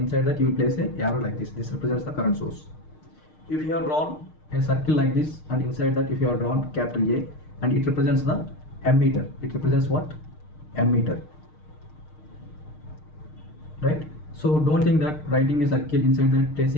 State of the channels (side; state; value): right; late; 6.5 ms